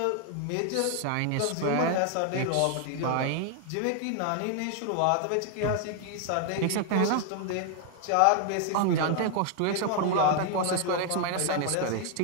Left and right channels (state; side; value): different; both; correlation 0.00